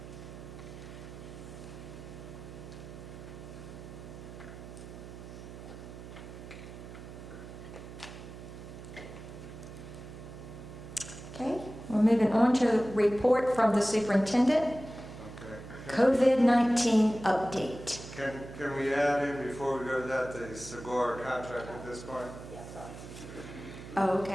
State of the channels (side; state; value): right; noise; hum, 13 dB below the sound